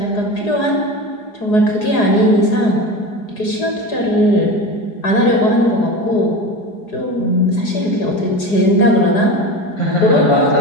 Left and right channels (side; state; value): right; late; 4.8 ms